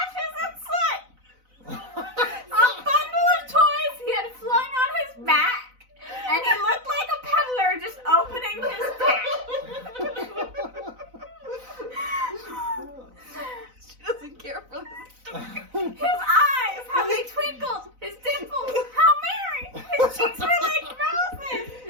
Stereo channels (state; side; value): late; left; 4.0 ms